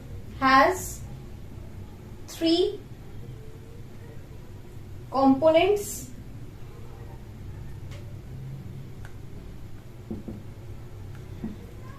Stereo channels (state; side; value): identical; both; correlation 1.00